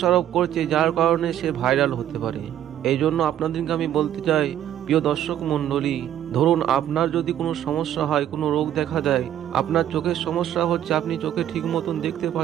করছে, যার কারণে সে ভাইরাল হতে পারে। এই জন্য আপনাদেরকে আমি বলতে চাই, প্রিয় দর্শক মণ্ডলী, ধরুন আপনার যদি কোনো সমস্যা হয়, কোনো রোগ দেখা দেয়, আপনার চোখের সমস্যা হচ্ছে, আপনি চোখে ঠিক মতন দেখতে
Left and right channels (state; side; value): quieter; left; 11.1 dB